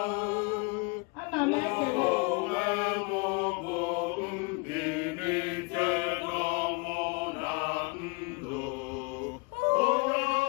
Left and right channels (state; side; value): quieter; right; 30.8 dB